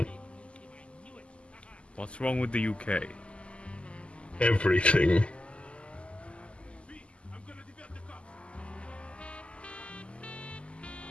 What's wrong with the UK? Everything.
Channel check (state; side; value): late; right; 0.055 ms